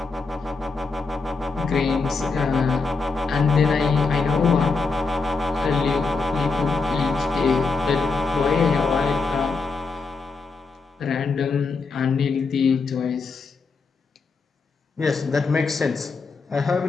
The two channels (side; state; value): right; quieter; 4.3 dB